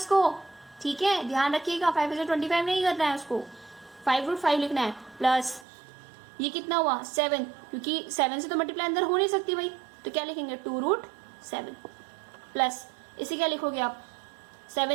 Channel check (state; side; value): drops out; left; at 5.7 s